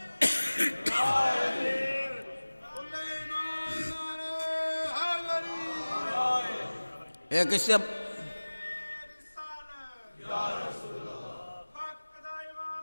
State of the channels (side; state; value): both; inverted; correlation -1.00